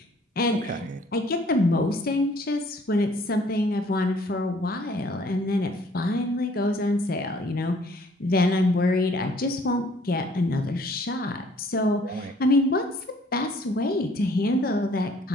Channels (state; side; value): normal; both; correlation 0.59